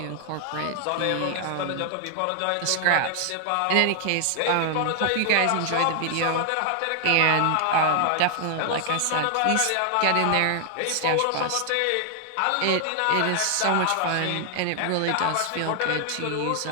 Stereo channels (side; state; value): both; different; correlation 0.00